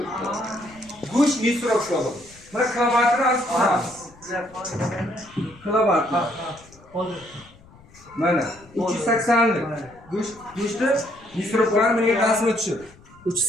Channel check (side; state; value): left; noise; rumble, 25 dB below the sound